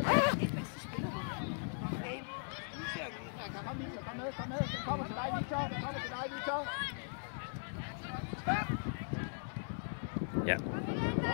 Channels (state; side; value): silent; right; 52 dB below the other